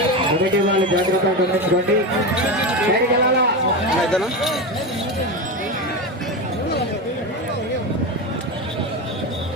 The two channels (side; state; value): both; normal; correlation 0.18